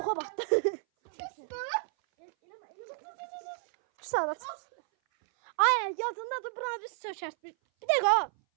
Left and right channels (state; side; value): silent; left; 57 dB below the other